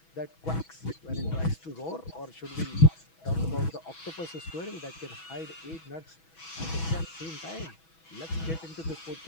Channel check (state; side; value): late; right; 6.1 ms